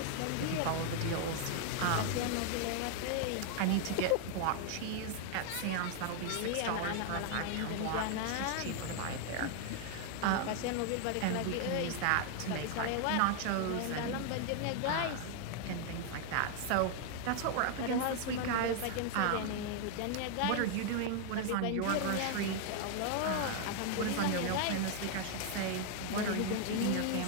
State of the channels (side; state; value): both; different; correlation 0.00